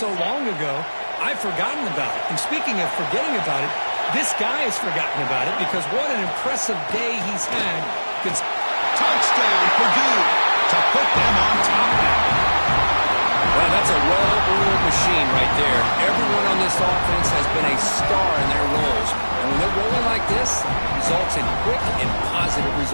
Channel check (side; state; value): both; inverted; correlation -1.00